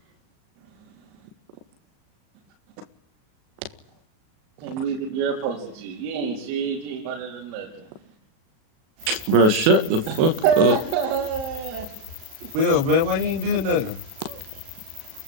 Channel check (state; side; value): late; left; 37 ms